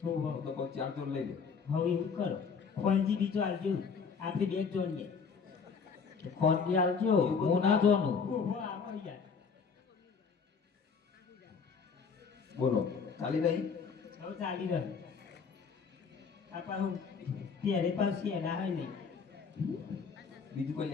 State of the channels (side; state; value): right; quieter; 5.7 dB